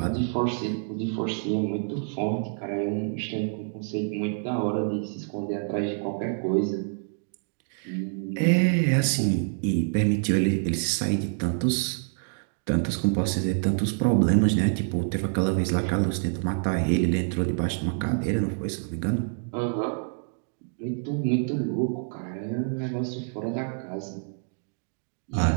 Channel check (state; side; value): silent; left; 57 dB below the other